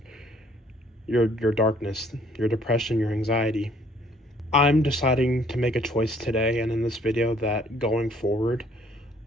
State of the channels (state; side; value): normal; both; correlation 0.61